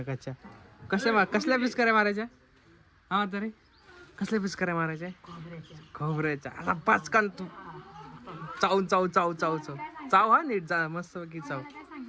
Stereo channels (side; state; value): both; identical; correlation 1.00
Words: कसल्या पिचकाऱ्या मारायच्या? हा तरी कसल्या पिचकाऱ्या मारायच्या? खोबऱ्याच्या. आता पाचकान तू चाव चाव चाव चाव चाव चाव हा नीट जा मस्त की चाव.